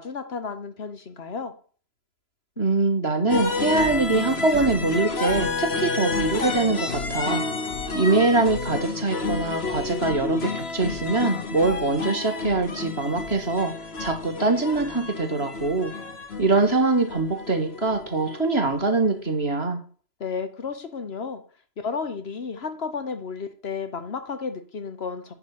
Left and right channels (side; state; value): right; late; 3.0 ms